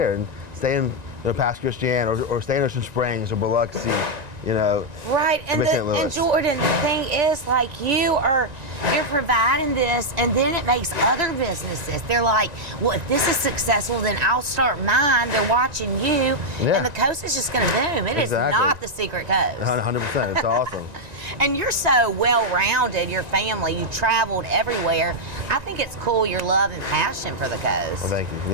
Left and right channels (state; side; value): late; left; 1.9 ms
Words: and stay in Pass Christian or stay in Ocean Springs or Biloxi. Right, and Jordan, the thing is, like, you're providing this, and then it makes other businesses. They're like, well, if this is successful, then I'll start mine. They're watching you, and the coast is just going to boom. It is not the secret coast. 100%, it's awesome. And you're so well-rounded, your family, you traveled everywhere. I think it's cool, your love and passion for the coast. Well, thank you.